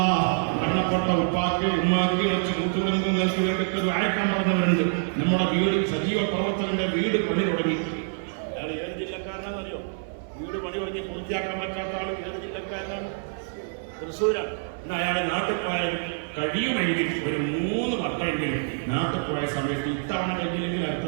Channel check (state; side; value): silent; left; 60 dB below the other